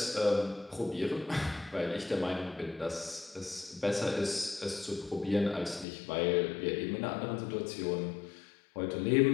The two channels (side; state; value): right; drops out; at 5.9 s